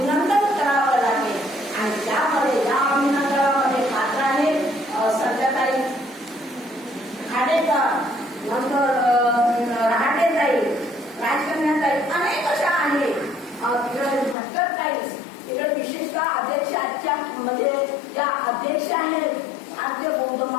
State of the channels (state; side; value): drops out; right; at 14.4 s